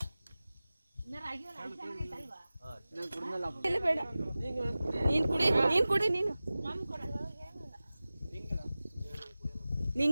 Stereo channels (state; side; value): inverted; both; correlation -0.97